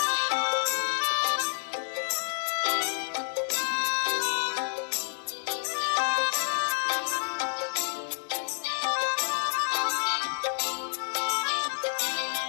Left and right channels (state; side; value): silent; right; digital silence